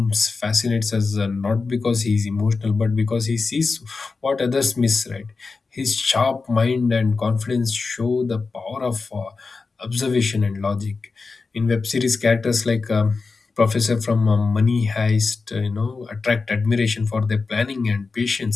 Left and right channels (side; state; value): right; quieter; 4.3 dB